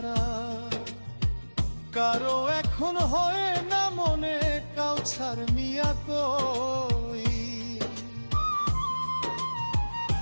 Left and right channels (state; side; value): inverted; both; correlation -1.00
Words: কারো এখন হয় না মনে কাউছার মিয়া কই।